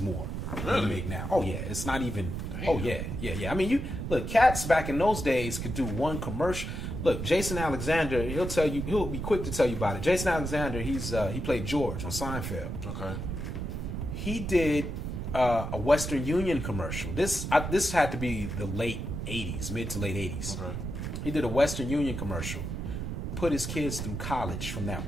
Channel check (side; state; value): right; noise; rumble, 4 dB below the sound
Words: more than you make now. Oh yeah, it's not even. Damn. Oh yeah. I mean, you look, cats back in those days could do one commercial. Look, Jason Alexander, he'll be quick to tell you about it. Jason Alexander, he played George on Seinfeld. Okay. He did a Western Union commercial. This had to be the late 80s, mid to late 80s. Okay. He did a Western Union commercial. Put his kids through college from that